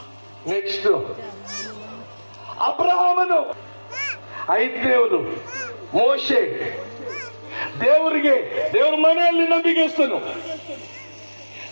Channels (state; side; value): inverted; both; correlation -1.00